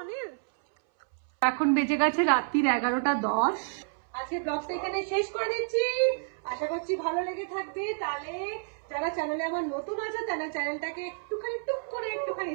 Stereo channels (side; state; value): left; silent; 58 dB below the other